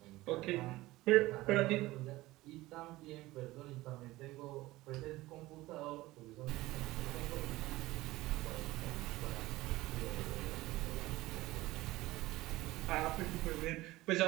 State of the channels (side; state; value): left; quieter; 18.4 dB